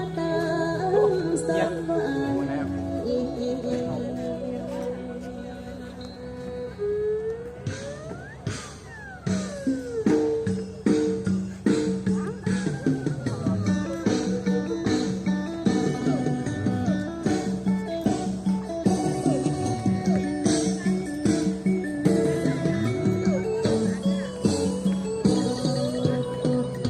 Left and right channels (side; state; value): both; identical; correlation 1.00